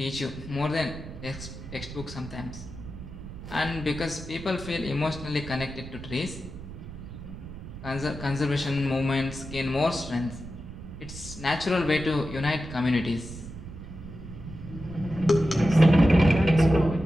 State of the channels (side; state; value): right; noise; rumble, 12 dB below the sound